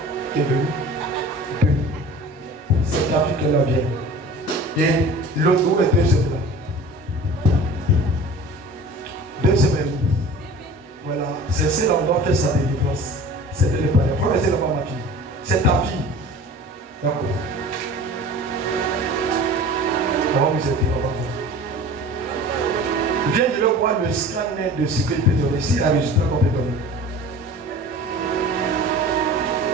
qui est venu. C'est ta vie qui est là bien. Et l'autre jour est 2 semaines là. 2 semaines. Voilà. C'est celle-là on doit faire sa délivrance. C'était le père. Il faut rester là-bas ma fille. C'est ta fille. D'accord. On va vous aider. Viens de le voir le scanner de ce qu'il peut donner. Si la résultat qu'on peut donner.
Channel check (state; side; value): normal; both; correlation 0.41